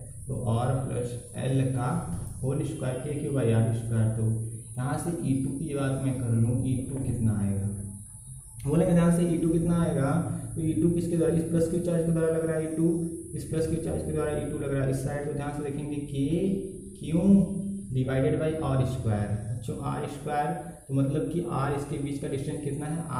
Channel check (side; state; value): both; identical; correlation 1.00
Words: तो आर प्लस एल का whole square K Q by R square. तो यहाँ से E2 की बात मैं कर लूँ, E2 कितना आएगा, बोलेंगे ध्यान से E2 कितना आएगा, तो E2 किसके द्वारा, इस प्लस क्यू चार्ज के द्वारा लग रहा है E2, इस प्लस क्यू चार्ज के द्वारा E2 लग रहा है इस साइड। तो ध्यान से देखेंगे K Q divided by R square, बच्चों आर स्क्वायर, तो मतलब कि आर इसके बीच का डिस्टेंस कितना है,